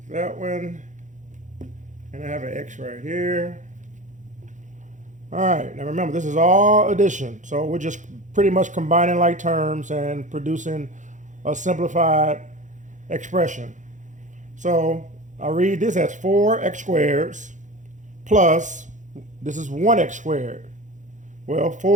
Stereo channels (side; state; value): left; late; 0.36 ms